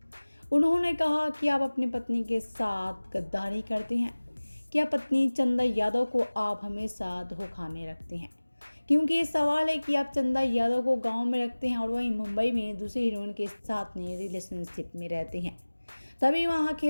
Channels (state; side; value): inverted; both; correlation -1.00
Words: उन्होंने कहा कि आप अपनी पत्नी के साथ गद्दारी करते हैं। क्या पत्नी चंदा यादव को आप हमेशा धोखा में रखते हैं? क्योंकि ये सवाल है कि आप चंदा यादव को गांव में रखते हैं और वहीं मुंबई में दूसरे हीरोइन के साथ में रिलेशनशिप में रहते हैं। तभी वहाँ